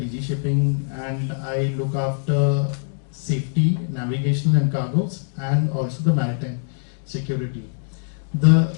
Shipping, and I look after safety, navigation and cargoes, and also the maritime security. The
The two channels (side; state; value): right; silent; digital silence